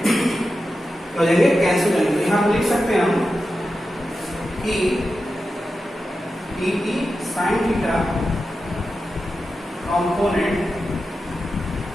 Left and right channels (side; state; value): both; normal; correlation 0.91